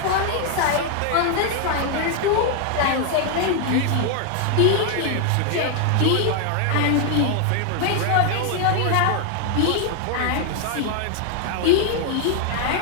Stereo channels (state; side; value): different; both; correlation 0.00